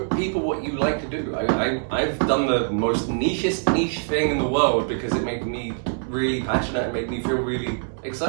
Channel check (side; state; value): left; silent; digital silence